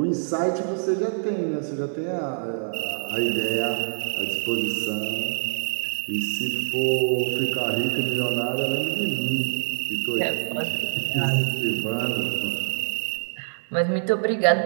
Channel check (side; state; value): left; silent; digital silence